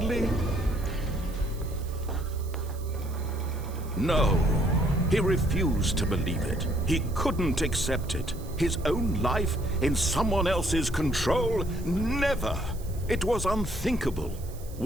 No, he refused to believe it. He couldn't accept it. His own life in someone else's control? Never! It was unthinkable,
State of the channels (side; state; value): right; noise; hiss, 20 dB below the sound